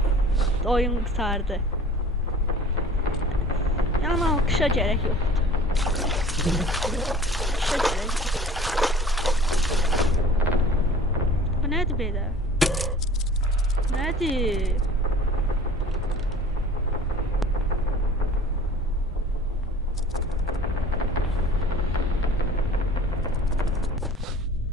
Oyun kurtardı. Yani alkışa gerek yoktu. Alkışa gerek yok. Bu nedir böyle? Nedir?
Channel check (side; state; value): both; normal; correlation 0.46